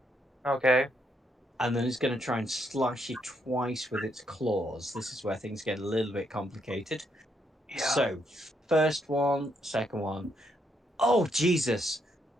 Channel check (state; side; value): normal; both; correlation 0.76